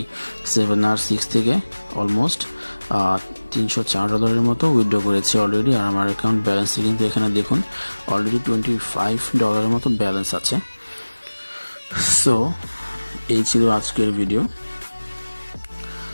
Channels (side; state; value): both; inverted; correlation -1.00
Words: 7R6 থেকে অলমোস্ট $304 মতো উইথড্র করেছি অলরেডি। আর আমার অ্যাকাউন্ট ব্যালেন্সে কিন্তু এখানে দেখুন অলরেডি $25 মতো ব্যালেন্স আছে। সো এই ছিল আজকের ভিডিও।